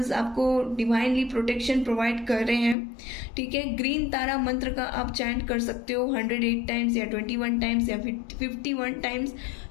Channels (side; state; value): right; drops out; at 2.8 s